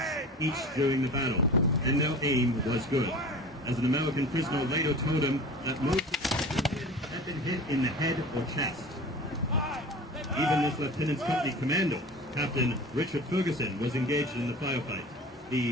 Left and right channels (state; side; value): normal; both; correlation 0.37